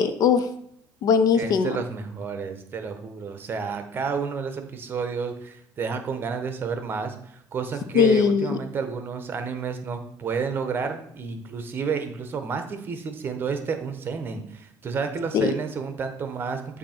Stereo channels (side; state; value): both; normal; correlation 0.48